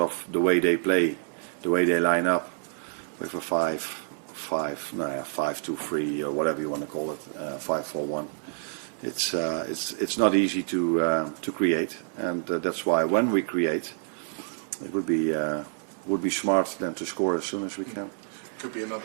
the way they play, the way they line up with a 5-2-3 or whatever you want to call it, 5-4-1. It's not easy to create, and that's why when we create, it would be smart then to score as soon as we can. Could be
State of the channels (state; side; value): silent; left; digital silence